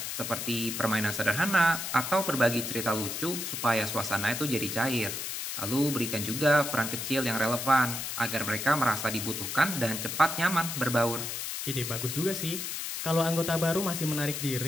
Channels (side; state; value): left; noise; hiss, 4 dB below the sound